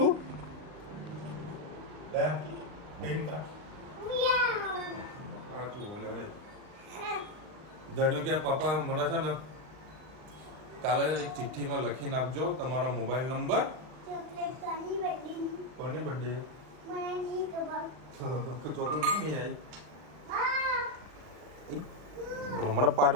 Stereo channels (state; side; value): late; left; 39 ms